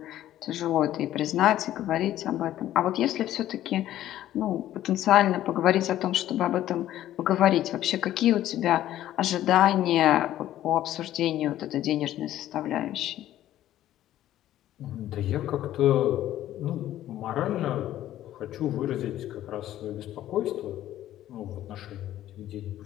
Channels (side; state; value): right; quieter; 13.0 dB